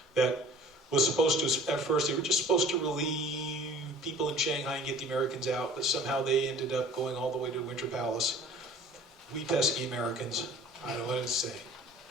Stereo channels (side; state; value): both; normal; correlation 0.46